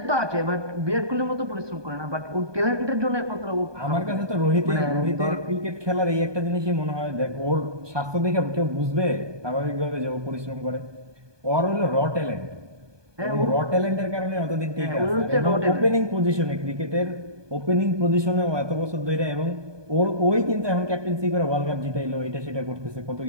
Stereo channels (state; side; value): late; left; 1.2 ms